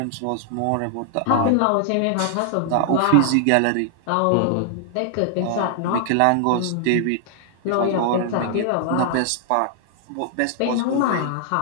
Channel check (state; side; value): different; both; correlation 0.00